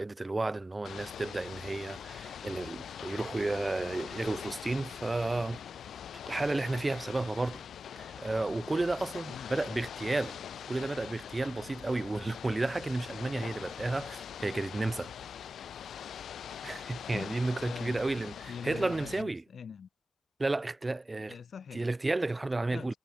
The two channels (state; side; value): normal; both; correlation 0.96